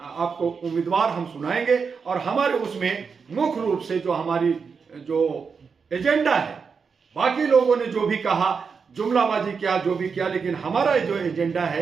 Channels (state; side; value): quieter; left; 5.6 dB